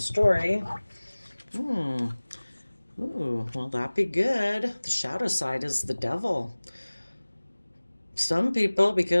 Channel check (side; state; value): both; inverted; correlation -1.00